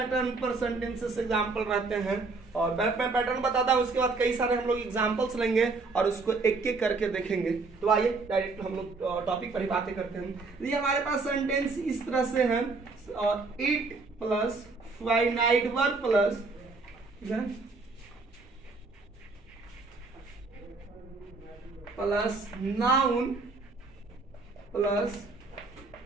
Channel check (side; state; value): left; quieter; 3.9 dB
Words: पर सेंटेंसेस एग्जाम्पल रहते हैं और मैं पैटर्न बताता हूं, उसके बाद कई सारे हम लोग एग्जाम्पल्स लेंगे और उसको एक एक करके देखेंगे। तो आइए डायरेक्ट हम लोग टॉपिक पर ही बातें करते हैं। ये हमारे पास सेंटेंस इस तरह से है और it plus finite verb plus noun plus